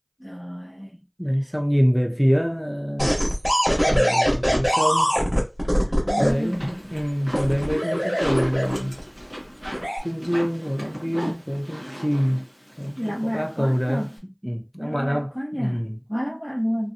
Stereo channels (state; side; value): identical; both; correlation 1.00